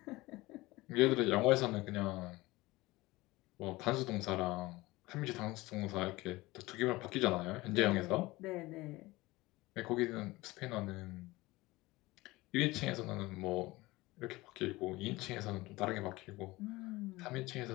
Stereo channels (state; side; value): quieter; right; 20.3 dB